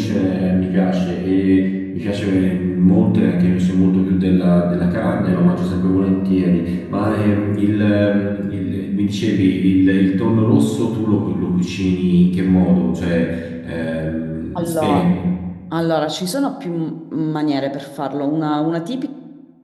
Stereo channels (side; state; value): both; identical; correlation 1.00